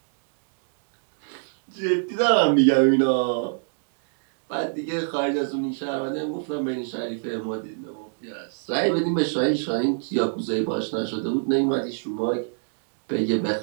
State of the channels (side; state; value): left; silent; digital silence